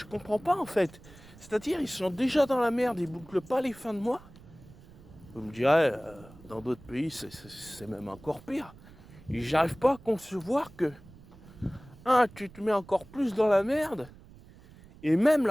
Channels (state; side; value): noise; right; rumble, 21 dB below the sound